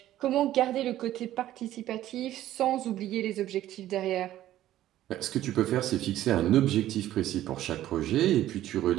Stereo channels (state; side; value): quieter; left; 13.4 dB